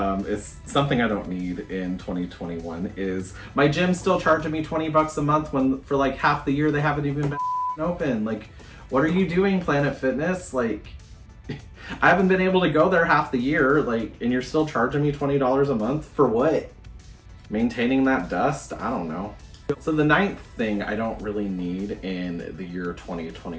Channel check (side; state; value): both; identical; correlation 1.00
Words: is something I don't need in 2021 is my gym still charging me 20 bucks a month when for like half the year they haven't even been open. Like, what are you doing, Planet Fitness? Like, I haven't been able to go there half the year, like, and you're still charging me $20 a month for what? Maintaining that dust? I don't know. So the 9th thing I don't really need in the year